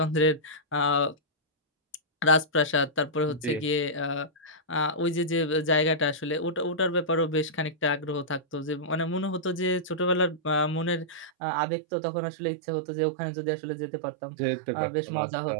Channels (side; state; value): left; drops out; at 11.3 s